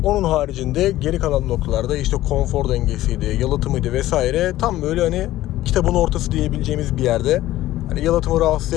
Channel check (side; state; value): right; quieter; 15.1 dB